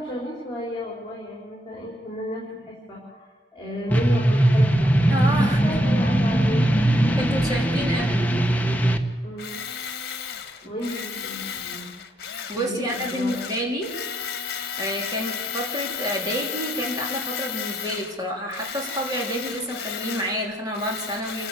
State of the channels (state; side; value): normal; both; correlation 0.74